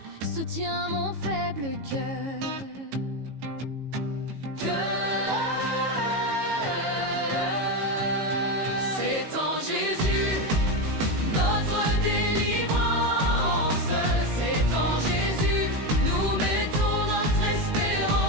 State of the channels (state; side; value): late; left; 18 ms